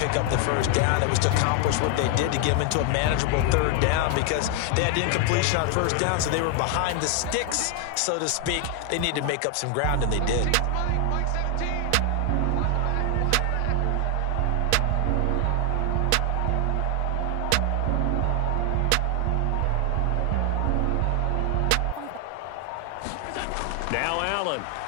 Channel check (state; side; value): different; both; correlation 0.00